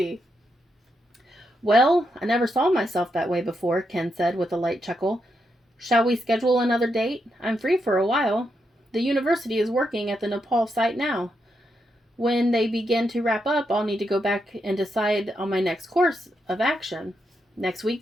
Well, I never saw myself that way before, Ken said with a light chuckle. Shall we schedule another date? I'm free for a while. The university is working at the Nepal site now. When they begin to wrap up, I'll need to go back and decide on my next course of action. Next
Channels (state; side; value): normal; both; correlation 0.82